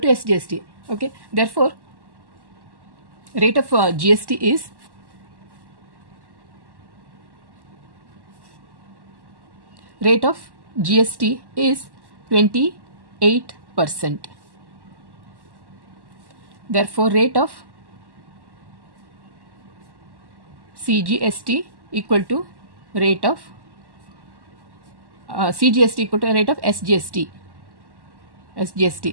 SGST. Okay. Therefore, rate of GST is rate of GST is 28%. Therefore, rate of CGST equal to rate of CGST equal to rate of SGST.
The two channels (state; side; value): late; left; 1.1 ms